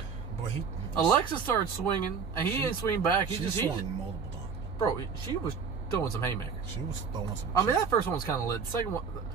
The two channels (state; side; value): quieter; left; 5.9 dB